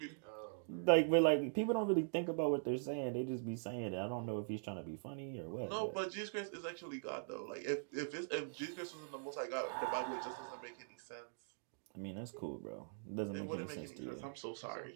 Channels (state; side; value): silent; left; digital silence